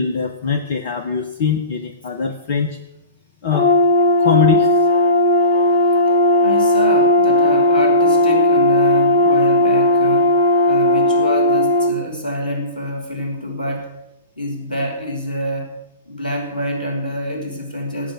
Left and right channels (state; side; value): inverted; both; correlation -0.36